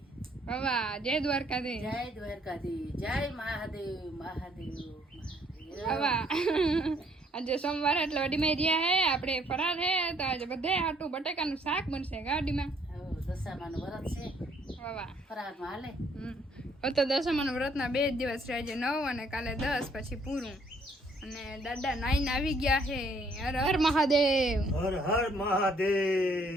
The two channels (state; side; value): normal; both; correlation 0.65